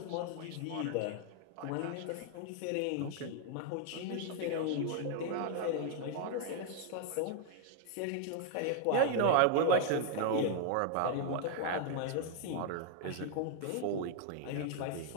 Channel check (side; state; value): both; different; correlation 0.00